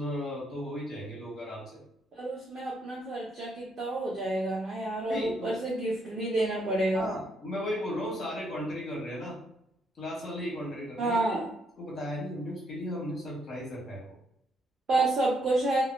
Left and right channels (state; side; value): normal; both; correlation 0.74